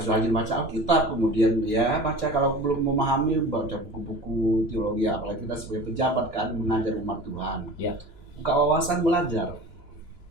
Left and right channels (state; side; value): late; right; 3.0 ms